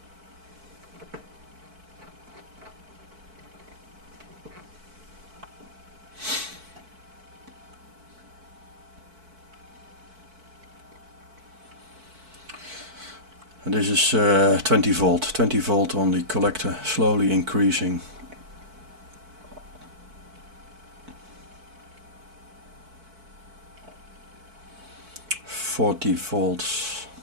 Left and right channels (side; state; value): left; late; 4.5 ms